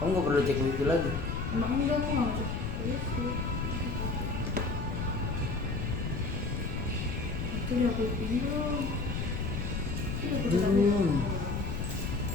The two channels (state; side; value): noise; left; rumble, 2 dB below the sound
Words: nggak perlu cek wifi lagi. Emang enggak, aku nggak mau cek wifi. Itu udah aku belum. Itu udah aku Belum.